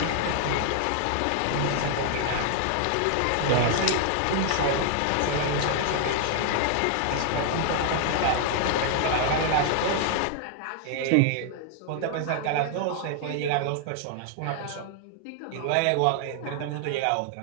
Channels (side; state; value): both; different; correlation 0.00